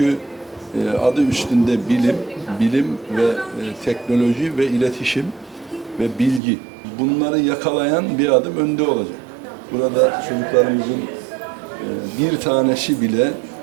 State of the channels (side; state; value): left; drops out; at 6.4 s